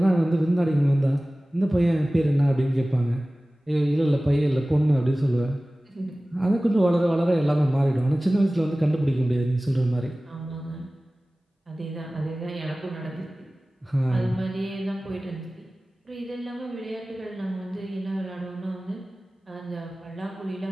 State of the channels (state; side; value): normal; both; correlation 0.97